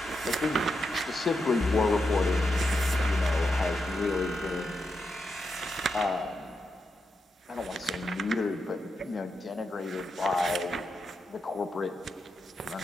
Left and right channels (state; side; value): normal; both; correlation 0.86